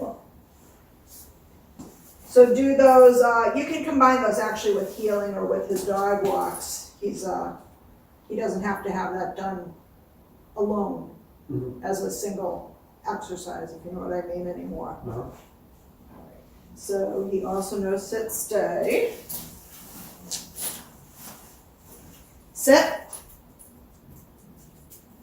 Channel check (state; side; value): identical; both; correlation 1.00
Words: So do those, you can combine those actually with healing or with his dog walks. He doesn't have to have that done alone as a single exercise, if you know what I mean anymore. So he also knows sit, stay. Sit.